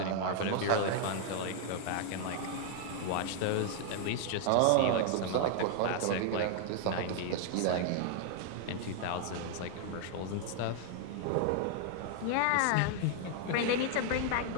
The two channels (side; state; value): both; different; correlation 0.00